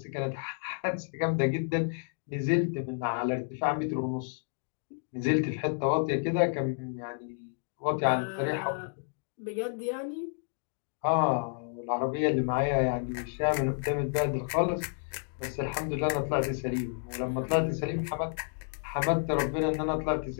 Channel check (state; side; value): silent; right; digital silence